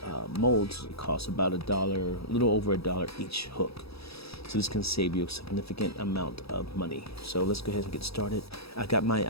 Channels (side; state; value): right; late; 0.77 ms